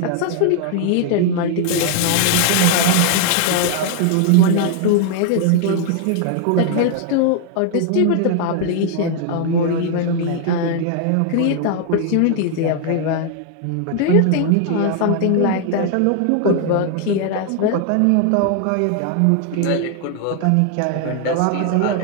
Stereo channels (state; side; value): different; both; correlation 0.00